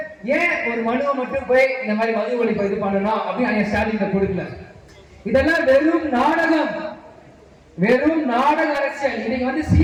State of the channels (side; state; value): both; identical; correlation 1.00